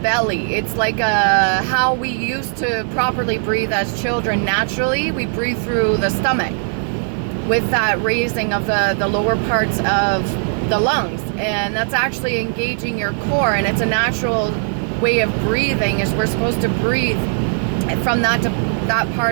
It's like how we used to properly breathe as children. Naturally, we breathe through the stomach with that raising of the lower parts of the lungs. And that's actually engaging your core. And it's a natural way of breathing, is we're supposed to breathe from that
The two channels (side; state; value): left; silent; 64 dB below the other